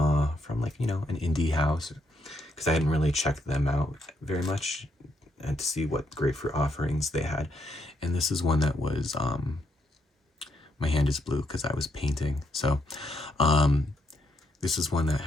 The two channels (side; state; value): both; normal; correlation 0.76